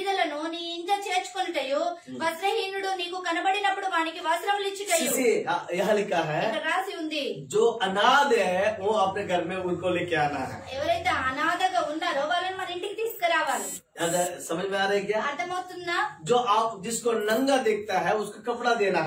నీ ఇంట చేర్చుకొనుటయు వస్త్రహీనుడు నీకు కనబడినప్పుడు వానికి వస్త్రములు ఇచ్చుటయు. यहाँ लिखा है, ఇక్కడ రాసి ఉంది, जो अनाथ है वो अपने घर में उनको लेके आना है. ఎవరైతే అనాథగా ఉన్నారో వాళ్ళని మన ఇంటికి తీసుకురావాలి. समझ में आ रहा है क्या? అర్థమవుతుందా? जो आप जिसको नंगा देखता है उसको कपड़ा देना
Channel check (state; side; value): identical; both; correlation 1.00